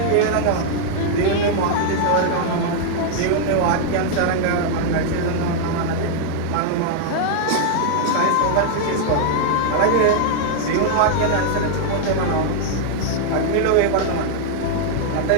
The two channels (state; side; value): different; both; correlation -0.01